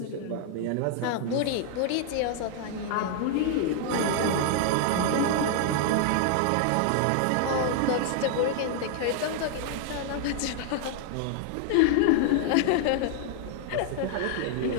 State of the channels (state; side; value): different; both; correlation 0.00